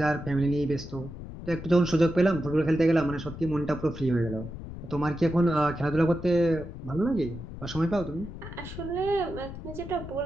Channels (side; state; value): left; noise; rumble, 11 dB below the sound